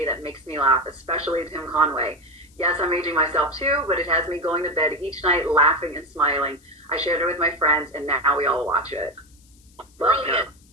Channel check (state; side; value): noise; left; hiss, 30 dB below the sound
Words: that makes me laugh, especially Tim Conway. Yes, I'm aging myself too, but it has me going to bed each night laughing and smiling. I shared it with my friends, and now we all watch it. Brilliant.